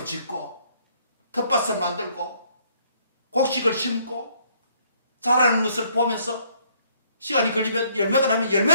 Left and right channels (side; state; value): both; inverted; correlation -0.65